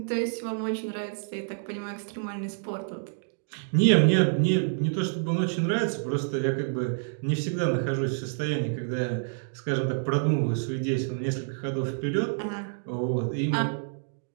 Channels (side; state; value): left; silent; digital silence